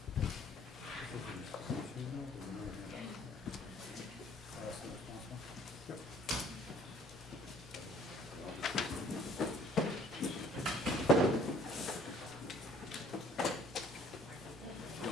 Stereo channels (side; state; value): both; normal; correlation 0.56